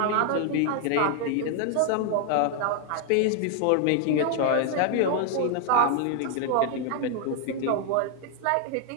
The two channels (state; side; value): different; both; correlation 0.00